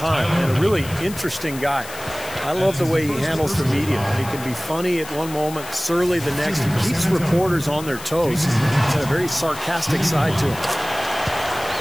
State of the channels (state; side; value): noise; left; hiss, 14 dB below the sound